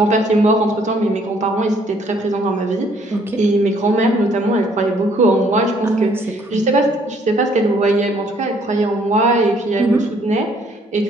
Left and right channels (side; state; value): both; normal; correlation 0.63